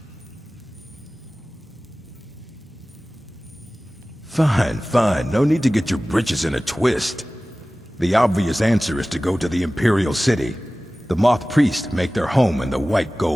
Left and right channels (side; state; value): both; normal; correlation 0.97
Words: Fine, fine. No need to get your britches in a twist. The obvious answer is to go to the Imperial City. The Moth priests make their home in the White